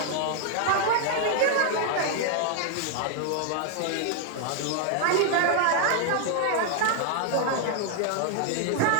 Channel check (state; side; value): different; both; correlation 0.00